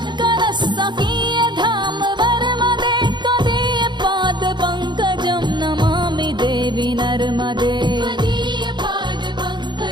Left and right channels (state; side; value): late; left; 0.22 ms